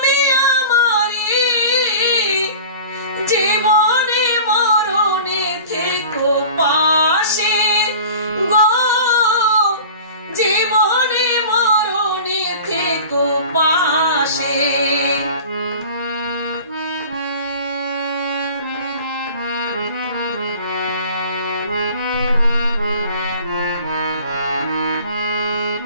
আমারে, জীবনে মরণে থেকো পাশে গো, জীবনে মরণে থেকো পাশে।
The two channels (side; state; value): both; inverted; correlation -0.41